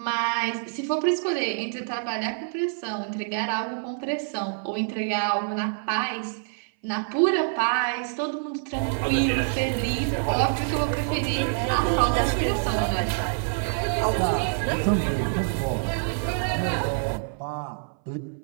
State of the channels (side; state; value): left; silent; 59 dB below the other